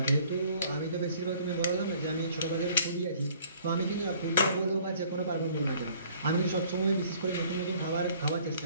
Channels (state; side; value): inverted; both; correlation -0.56